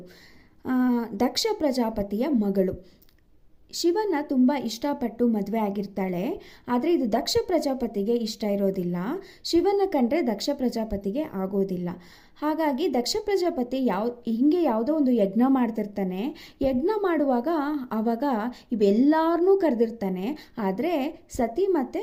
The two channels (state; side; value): identical; both; correlation 1.00